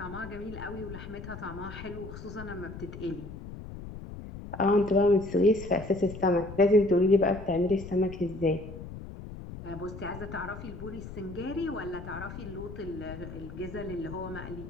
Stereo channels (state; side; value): noise; left; rumble, 11 dB below the sound